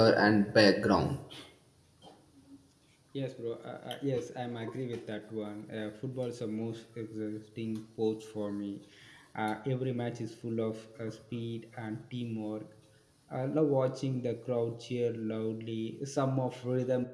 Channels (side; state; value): both; identical; correlation 1.00